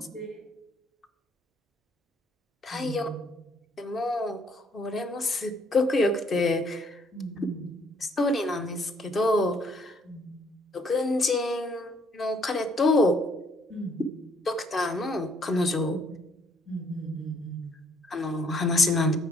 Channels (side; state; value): both; normal; correlation 0.65